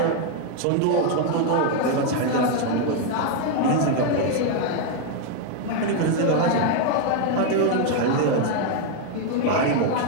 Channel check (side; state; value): both; different; correlation 0.01